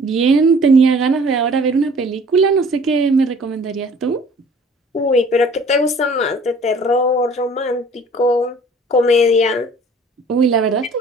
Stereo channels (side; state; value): both; normal; correlation 0.51